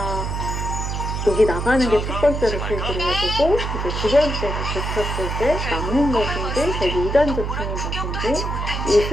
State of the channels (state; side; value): noise; right; hum, 3 dB below the sound